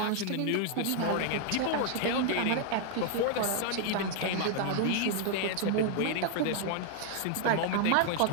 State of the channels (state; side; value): different; both; correlation 0.00